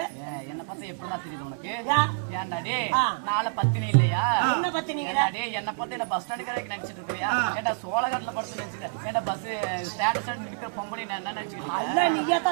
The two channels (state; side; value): silent; left; 60 dB below the other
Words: என்ன பார்த்தா எப்படிதான் தெரியுது உனக்கு? ஏன்டாடே நாளை பத்தினி இல்லையா? என்ன பத்தினி? என்ன பார்த்து என்ன பஸ் ஸ்டாண்டு கடைக்கு நினைச்சிட்டு இருக்கியா? ஏன்டா சோழகட்டில படுத்து நினைச்சுக்க? ஏன்டா பஸ் ஸ்டாண்ட் ஸ்டாண்ட் நிக்கிற பொம்பளை என்ன நினைச்சுக்கிட்டு? நீயே